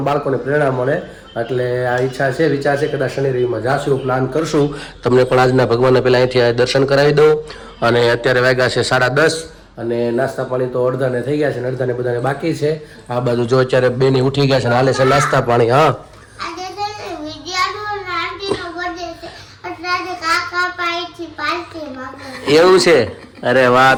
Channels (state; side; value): identical; both; correlation 1.00